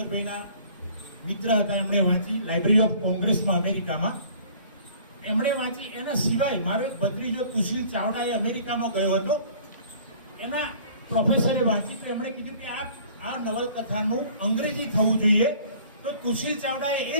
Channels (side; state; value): both; inverted; correlation -0.51